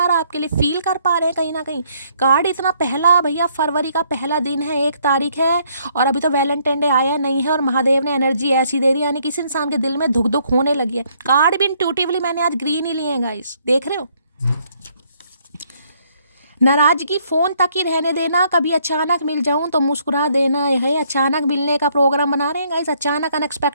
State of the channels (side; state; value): both; inverted; correlation -0.68